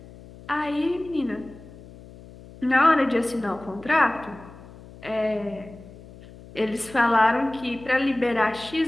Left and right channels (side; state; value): left; noise; hum, 19 dB below the sound